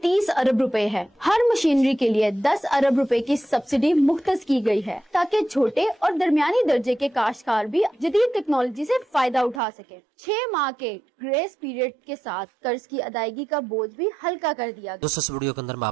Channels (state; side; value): drops out; left; at 9.6 s